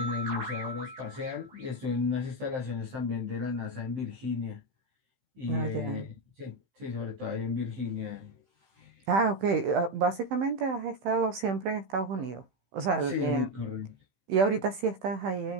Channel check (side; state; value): left; late; 15 ms